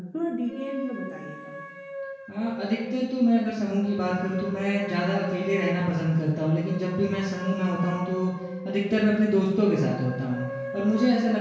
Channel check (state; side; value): identical; both; correlation 1.00